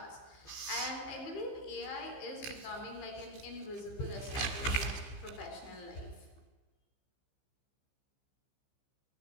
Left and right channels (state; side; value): late; right; 15 ms